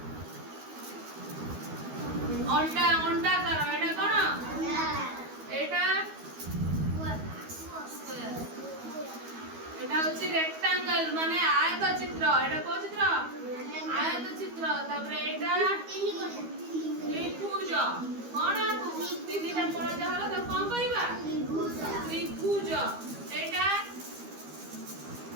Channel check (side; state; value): left; late; 12 ms